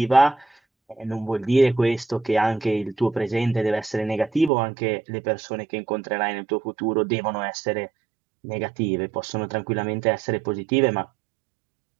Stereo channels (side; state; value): left; drops out; at 4.5 s